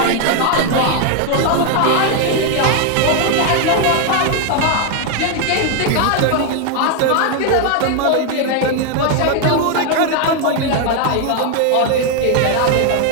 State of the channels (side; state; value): both; different; correlation 0.01